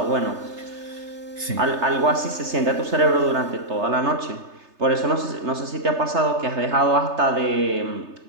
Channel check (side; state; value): left; late; 3.3 ms